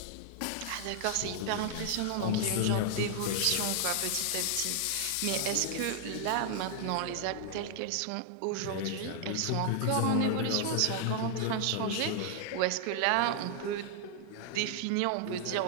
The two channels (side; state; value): both; different; correlation 0.00